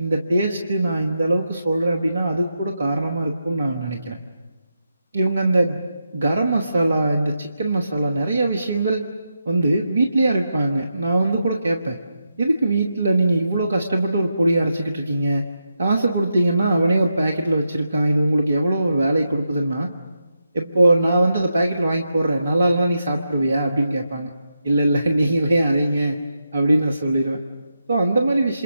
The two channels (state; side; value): inverted; both; correlation -0.85